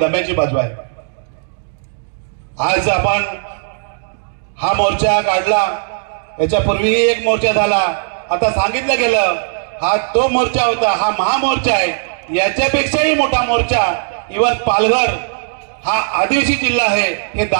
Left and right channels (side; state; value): left; silent; digital silence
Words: बाजू आहे। आज आपण हा मोर्चा काढला, याच्यापूर्वीही एक मोर्चा झाला, आता सांगितलं गेलं हा तो मोर्चा होता, हा महामोर्चा आहे, याच्यापेक्षाही मोठा मोर्चा इव्हन पालघर हा आदिवासी जिल्हा आहे हे